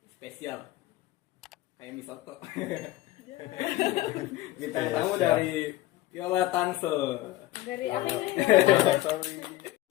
spesial kayak Misoto. Bintang tamu dari Viola Tangsel. Dari apa ini?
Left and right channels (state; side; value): quieter; right; 16.3 dB